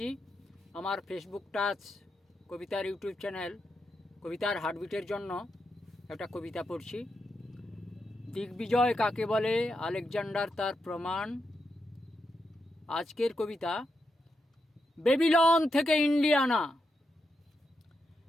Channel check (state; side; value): normal; both; correlation 0.85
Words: আমার ফেসবুক টাচ কবিতার ইউটিউব চ্যানেল কবিতার হার্টবিটের জন্য একটা কবিতা পড়ছি। দিগ্বিজয় কাকে বলে, আলেকজান্ডার তার প্রমাণ। আজকের কবিতা বেবিলন থেকে ইন্ডিয়ানা।